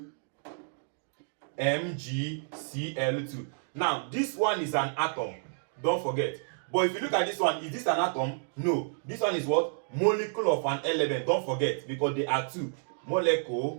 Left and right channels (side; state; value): left; silent; digital silence